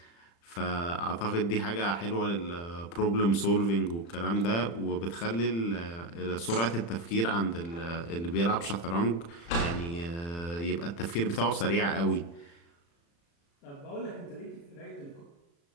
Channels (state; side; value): late; right; 35 ms